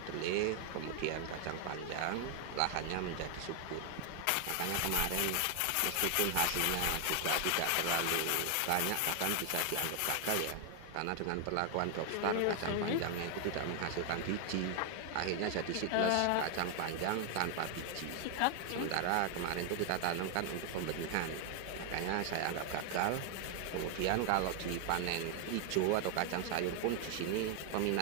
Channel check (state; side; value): different; both; correlation 0.00